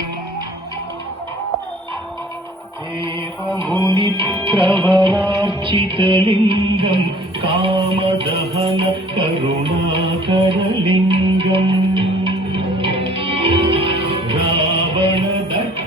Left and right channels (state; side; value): normal; both; correlation 0.53